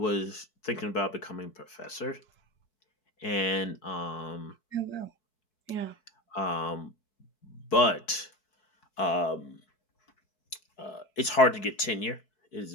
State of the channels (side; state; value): right; late; 4.6 ms